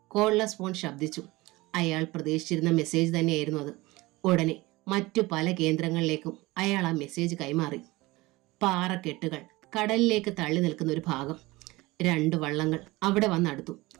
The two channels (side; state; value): left; quieter; 20.9 dB